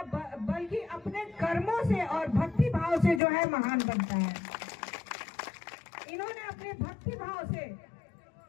बल्कि अपने कर्मों से और भक्ति भाव से जो है महान बनता है। इन्होंने अपने भक्ति भाव से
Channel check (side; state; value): right; drops out; at 3.2 s